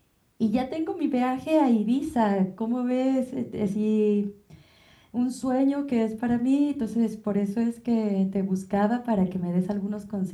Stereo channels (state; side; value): identical; both; correlation 1.00